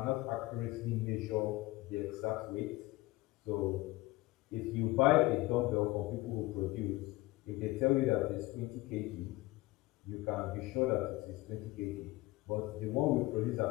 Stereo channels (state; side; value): quieter; right; 19.5 dB